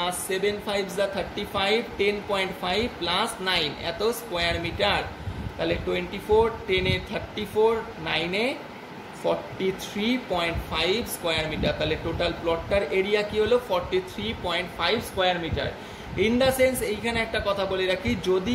7 5 যা 35 10.5 প্লাস 9 এত স্কোয়ার মিটার। তাহলে 24 10 এ 34 9 এ 43.5 স্কোয়ার মিটার। তাহলে টোটাল প্লটটার এরিয়া কি হলো 43.5 square metre. In the sense এইখানে একটা কথা বলে রাখি, যদি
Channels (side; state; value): both; identical; correlation 1.00